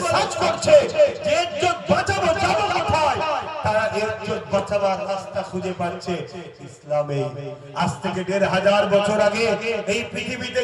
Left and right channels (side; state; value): both; identical; correlation 1.00